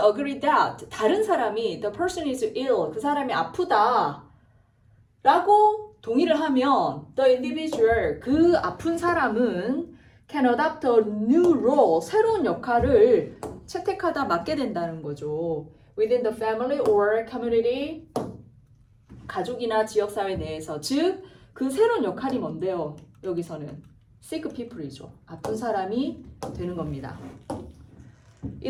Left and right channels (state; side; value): identical; both; correlation 1.00